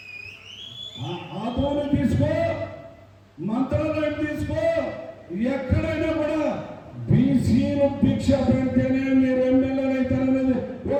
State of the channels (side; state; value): both; identical; correlation 1.00